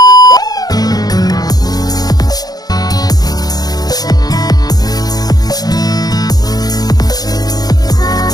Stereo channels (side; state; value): right; late; 0.19 ms